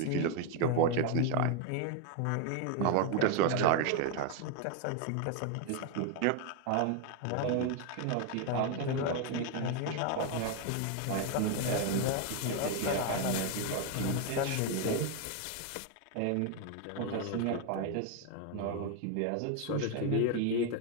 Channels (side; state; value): both; different; correlation 0.01